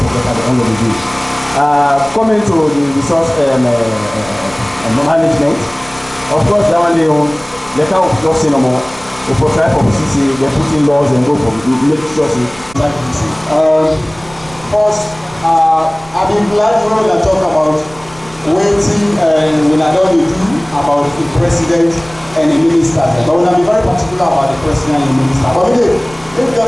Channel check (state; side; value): noise; right; rumble, 22 dB below the sound